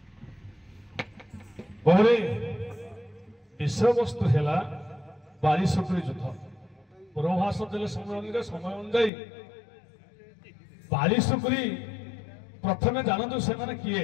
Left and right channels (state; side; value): drops out; right; at 9.1 s